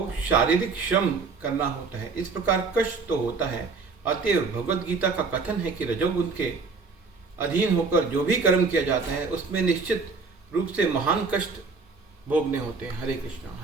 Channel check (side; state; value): left; quieter; 4.4 dB